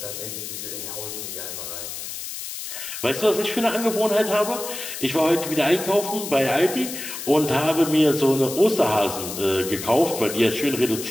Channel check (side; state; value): left; noise; hiss, 8 dB below the sound